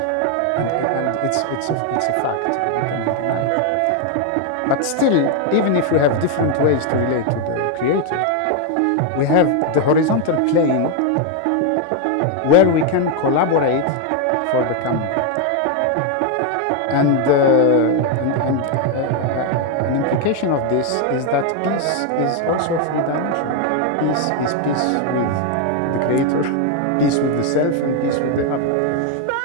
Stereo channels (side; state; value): both; different; correlation 0.01